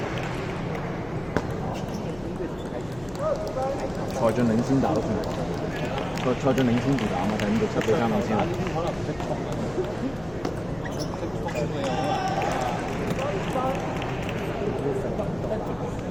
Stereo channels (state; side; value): noise; left; hum, 21 dB below the sound